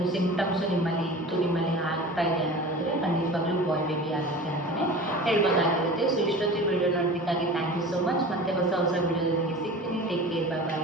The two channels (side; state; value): both; normal; correlation 0.37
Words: ಸಿಂಪ್ಟಮ್ಸು ನಿಮ್ಮಲ್ಲಿ ಇತ್ತು, ನಿಮ್ಮಲ್ಲಿ ಆಗ್ತಾ ಇದೆ ಅನ್ನೋದಾದರೆ ಖಂಡಿತವಾಗ್ಲೂ ಬಾಯ್ ಬೇಬಿ ಆಗುತ್ತೆ ಅಂತಲೇ ಹೇಳ್ಬೋದಾಗಿರುತ್ತೆ. ಸೊ ಇಷ್ಟೊತ್ತಿಗೆ ವಿಡಿಯೋ ನೋಡೋದಕ್ಕಾಗಿ ಥ್ಯಾಂಕ್ ಯು ಸೋ ಮಚ್. ಮತ್ತೆ ಹೊಸ ವಿಡಿಯೋದೊಂದಿಗೆ ಸಿಗ್ತೀನಿ. Take care, bye bye,